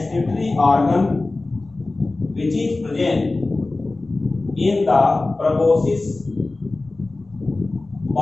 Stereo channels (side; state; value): right; quieter; 3.2 dB